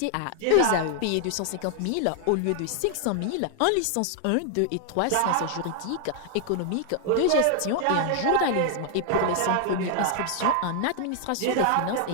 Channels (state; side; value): different; both; correlation 0.00